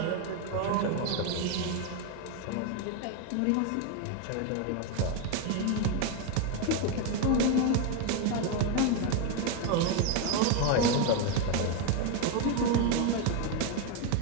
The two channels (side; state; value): both; different; correlation 0.02